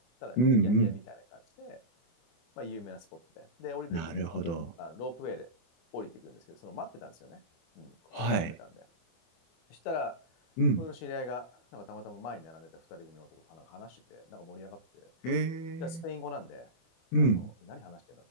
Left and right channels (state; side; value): late; right; 24 ms